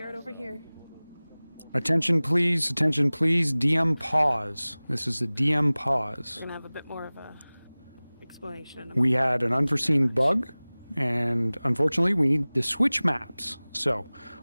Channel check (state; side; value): inverted; both; correlation -0.99